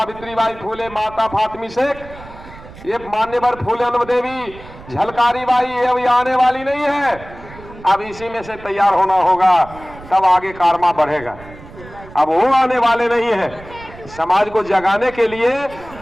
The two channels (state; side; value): noise; right; rumble, 18 dB below the sound